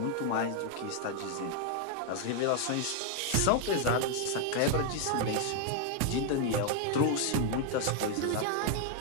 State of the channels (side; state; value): both; different; correlation 0.00